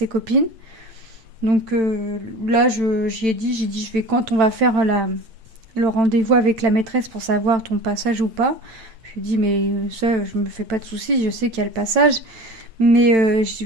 copines. Donc, là, j'ai dit, je vais, quand on va faire le rendez-vous avec la maîtresse pour savoir ton passage ou pas. Je lui ai dit, mais ça, je me fais pas de soucis, je sais qu'il y a le passage. Mais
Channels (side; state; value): left; late; 8.9 ms